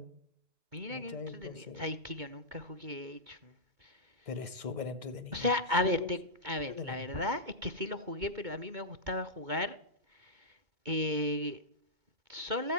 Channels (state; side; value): late; left; 2.2 ms